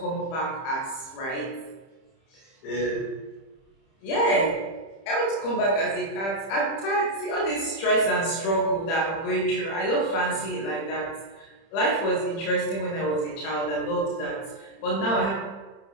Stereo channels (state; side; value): late; right; 30 ms